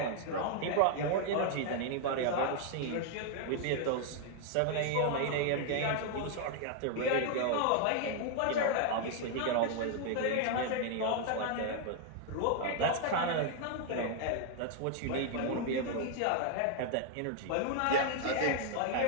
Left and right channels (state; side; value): different; both; correlation 0.00